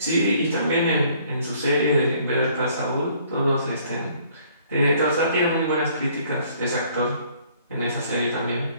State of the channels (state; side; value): inverted; both; correlation -0.60